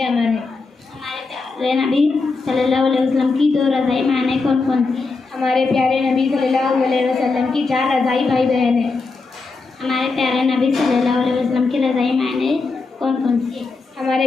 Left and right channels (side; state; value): right; quieter; 4.1 dB